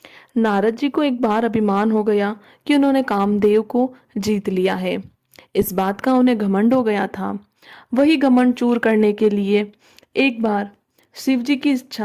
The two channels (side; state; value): both; identical; correlation 1.00